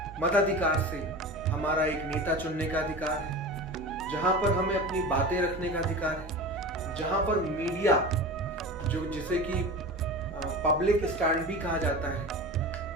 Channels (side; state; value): both; normal; correlation 0.31